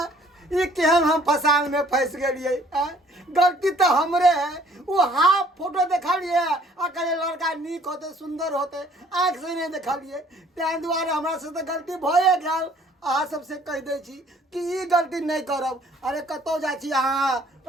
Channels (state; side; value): normal; both; correlation 0.58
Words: ई केहन हम फसान में फंस गेलिए गलती तो हमरे है वो हाफ फोटो देखलिए अकेले लड़का नीक होते सुंदर होते आँख से नहीं देखलिए तैं दुआरे हमरा से तो गलती भए गेल अहाँ सबसे कह दै छी कि ई गलती नहीं करब अरे कतौ जाइ छी अहाँ